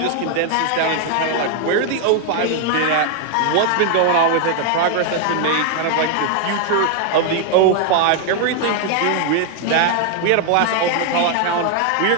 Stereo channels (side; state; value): both; different; correlation 0.00